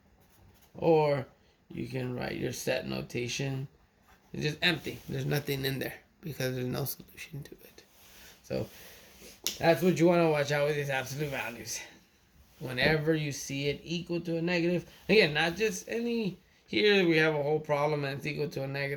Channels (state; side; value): identical; both; correlation 1.00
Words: Or you can write your set notation. It's just empty. There's nothing in there because there's no solution to it. So that's what you want to watch out with these absolute values. Whenever you see it equal to a negative, again, not just any, here we have a whole problem and it's equal to a